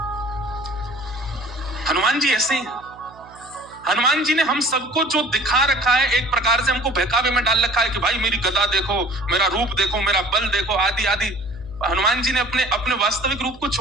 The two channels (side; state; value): right; noise; hum, 23 dB below the sound